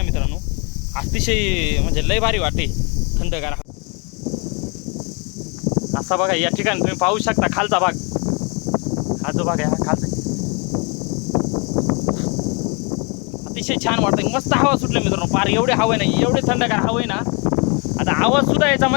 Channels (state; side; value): quieter; right; 33.0 dB